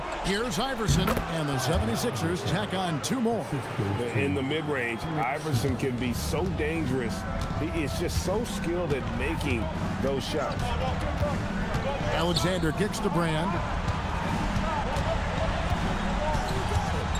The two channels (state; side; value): identical; both; correlation 1.00